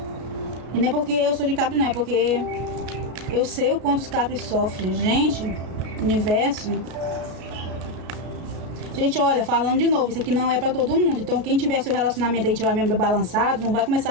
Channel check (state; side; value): late; left; 33 ms